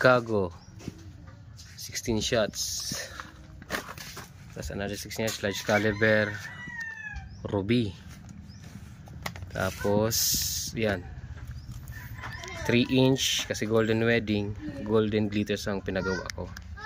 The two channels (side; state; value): both; identical; correlation 1.00